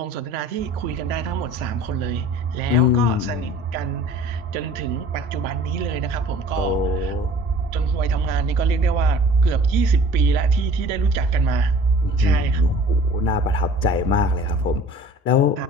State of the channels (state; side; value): normal; both; correlation 0.47